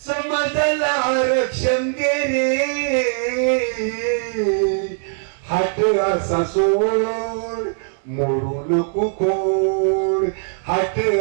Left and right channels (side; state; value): left; silent; 62 dB below the other